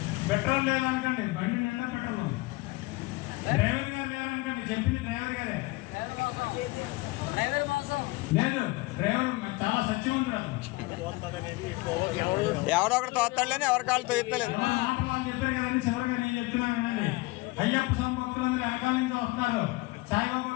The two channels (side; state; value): right; quieter; 22.5 dB